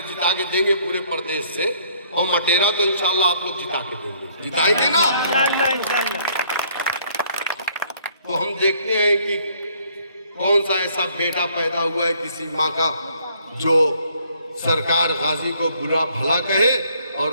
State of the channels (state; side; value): inverted; both; correlation -0.63